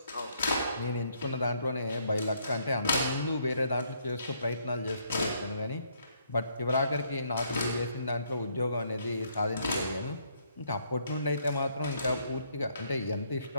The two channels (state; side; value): inverted; both; correlation -0.69